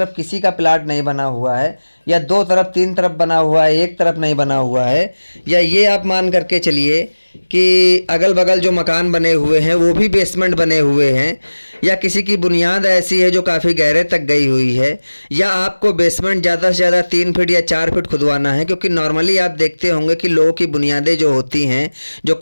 किसी का प्लाट नहीं बना हुआ है, या 2 तरफ 3 तरफ बना हुआ है, एक तरफ नहीं बना हुआ है, या ये आप मान करके चलिए कि अगल बगल जो मकान बने हुए हैं वो भी बेसमेंट बने हुए हैं, या किसी की बुनियाद ऐसी है जो काफ़ी गहरे तक गई हुई है, या आपको बेसमेंट ज़्यादा से ज़्यादा 3 फीट या 4 फीट खुदवाना है, क्योंकि नॉर्मली आप देखते होंगे कि लोगों की बुनियादें जो होती हैं, जो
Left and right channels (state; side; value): inverted; both; correlation -1.00